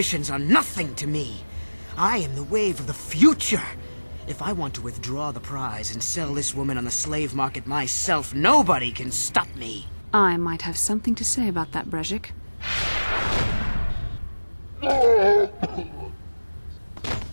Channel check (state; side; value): inverted; both; correlation -1.00